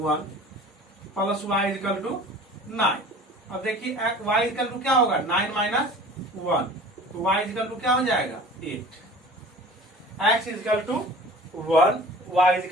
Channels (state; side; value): normal; both; correlation 0.43